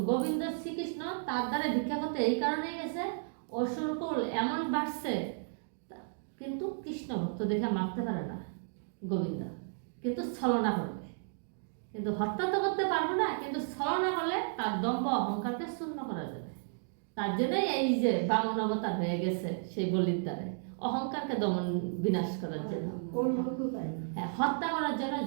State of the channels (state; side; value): silent; left; digital silence